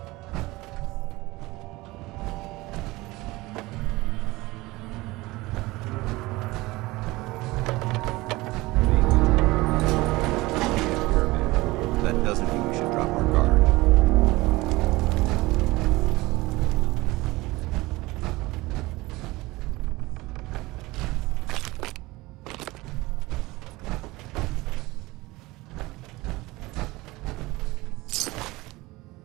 That doesn't mean we should drop our guard.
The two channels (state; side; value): quieter; left; 20.6 dB